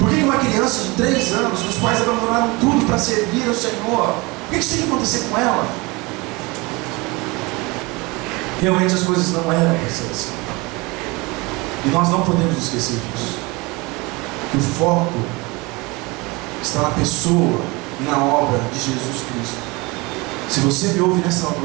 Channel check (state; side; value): quieter; left; 25.0 dB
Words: que uma criança de 3 anos, os pais abandonaram tudo para servir ao Senhor? Por que isso tem que acontecer com ela? Realmente as coisas não eram para ser assim. E nós não podemos esquecer disso. Que o foco está na pessoa e na obra de Jesus Cristo. Se você me ouve nessa